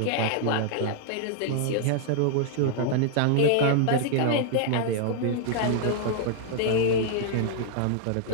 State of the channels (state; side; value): different; both; correlation 0.00